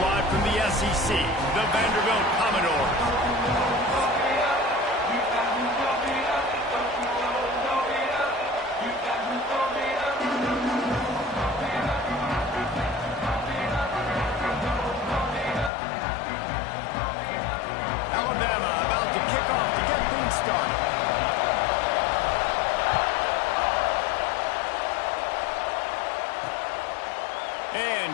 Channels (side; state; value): right; drops out; at 15.7 s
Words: from the SEC, the Vanderbilt Commodores.